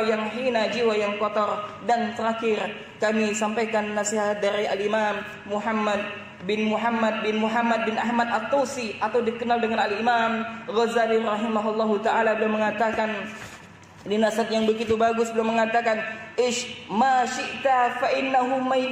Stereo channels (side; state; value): both; identical; correlation 1.00